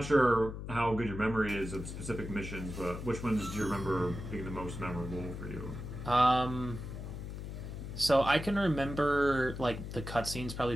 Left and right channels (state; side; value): noise; left; hum, 8 dB below the sound